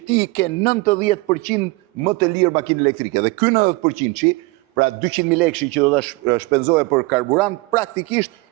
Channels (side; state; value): left; quieter; 24.0 dB